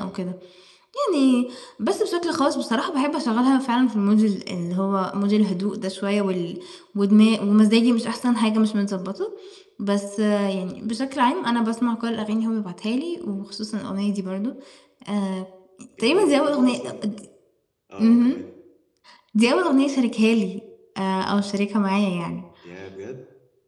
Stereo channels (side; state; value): both; identical; correlation 1.00